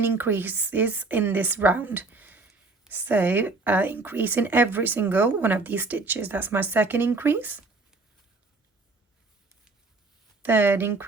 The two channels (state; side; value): quieter; left; 3.6 dB